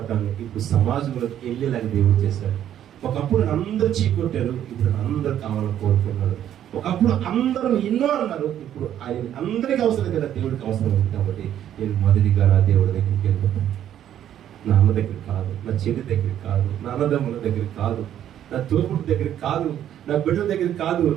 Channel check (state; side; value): quieter; left; 10.8 dB